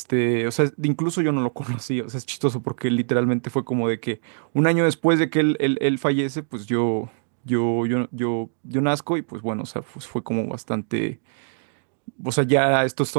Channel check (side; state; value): left; silent; digital silence